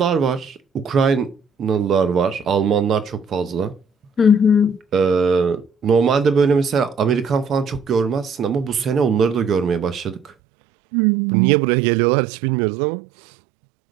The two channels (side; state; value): left; drops out; at 10.3 s